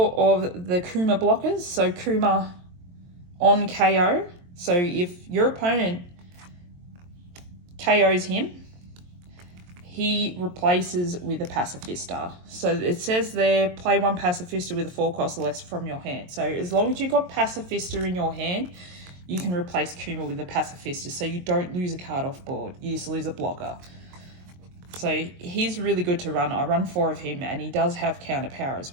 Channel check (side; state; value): left; late; 22 ms